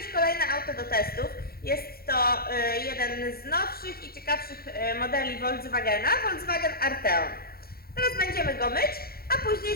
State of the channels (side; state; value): right; late; 0.44 ms